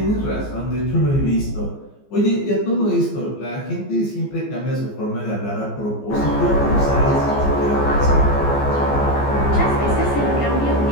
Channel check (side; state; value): right; late; 14 ms